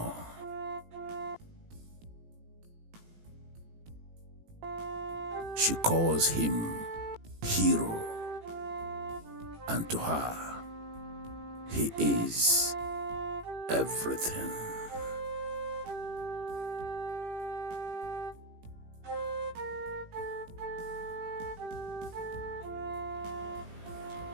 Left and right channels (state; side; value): late; left; 18 ms